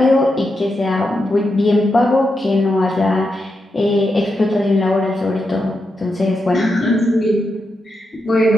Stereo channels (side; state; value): both; normal; correlation 0.85